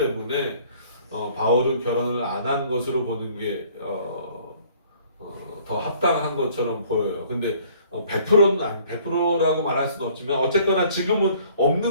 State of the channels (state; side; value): inverted; both; correlation -0.57